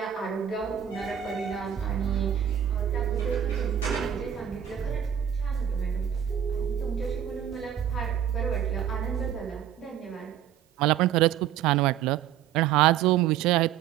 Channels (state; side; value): quieter; left; 9.9 dB